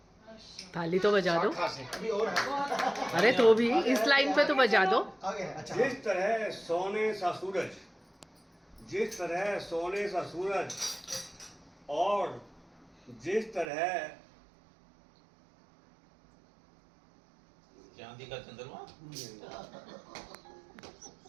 ताली तो बजा दो। शाखा से। अभी और है। अरे तो भी इस लाइन पे तो बजा दो। आगे है, अच्छा। जिस तरह सोने सा सूरज जिस तरह सोने सा सूरज और जिस तरह चांदी का चंद्रमा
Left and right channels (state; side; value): drops out; left; at 13.7 s